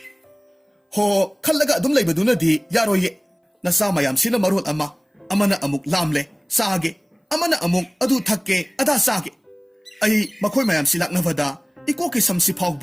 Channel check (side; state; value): both; identical; correlation 1.00